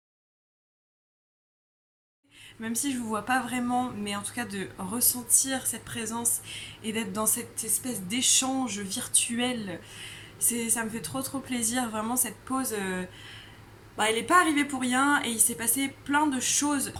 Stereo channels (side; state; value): both; identical; correlation 1.00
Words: Même si je vous vois pas vraiment, mais en tout cas de ressentir cette présence et d'être dans cette espèce d'échange virtuel, ça me fait trop plaisir. Vraiment cette pause, elle n'est pas arrivée pour rien et il s'est passé plein de choses à